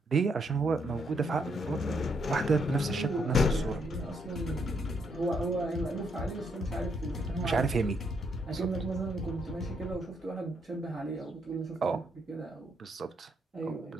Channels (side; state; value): both; normal; correlation 0.74